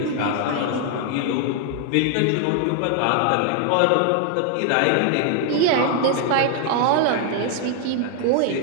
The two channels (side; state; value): both; different; correlation 0.00